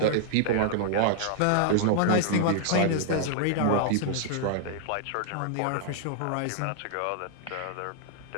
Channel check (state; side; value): different; both; correlation -0.01